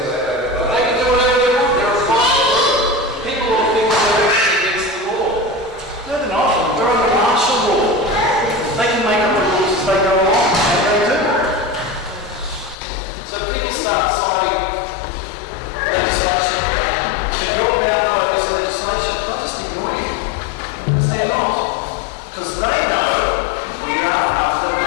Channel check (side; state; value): right; drops out; at 12.8 s